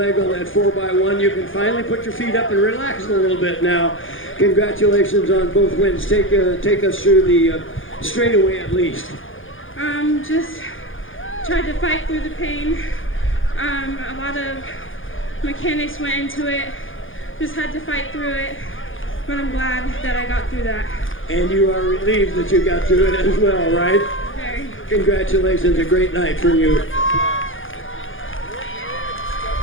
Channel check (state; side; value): late; right; 0.58 ms